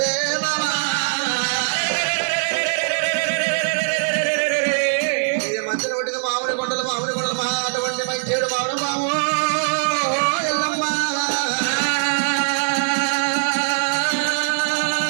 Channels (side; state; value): left; silent; digital silence